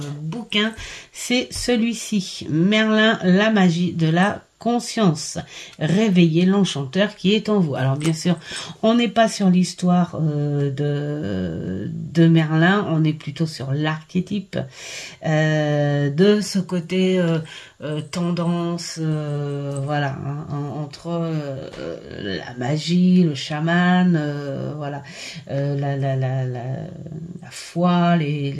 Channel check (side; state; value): both; identical; correlation 1.00